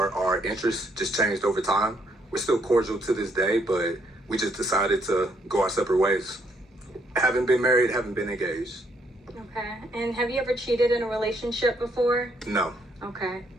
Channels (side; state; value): both; normal; correlation 0.71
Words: our interests just changed over time. We're still cordial to this day, but we just decided to go our separate ways. Haven't been married, haven't been engaged. Okay. And have you ever cheated in a relationship before? No. Okay.